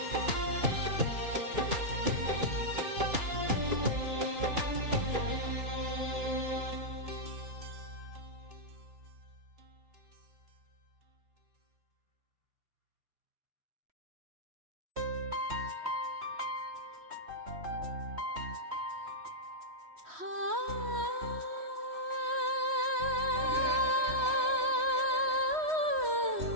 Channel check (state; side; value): late; left; 3.1 ms